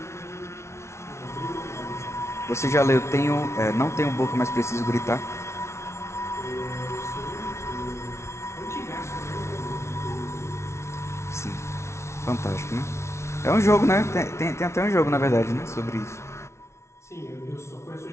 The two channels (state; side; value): late; right; 0.13 ms